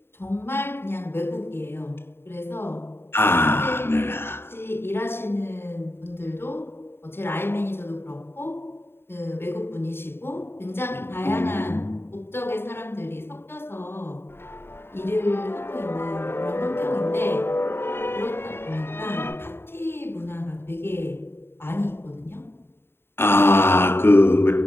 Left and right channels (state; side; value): late; right; 0.11 ms